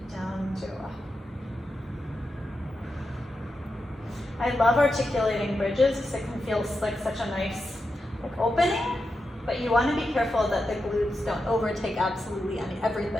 down to go up. I love articulating bridges because it can feel like such a nice opening, but you want to be careful that the glutes don't overtake absolutely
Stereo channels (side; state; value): both; normal; correlation 0.88